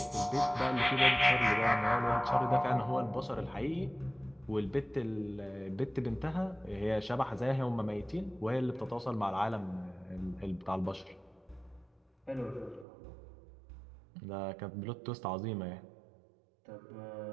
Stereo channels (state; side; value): drops out; left; at 12.9 s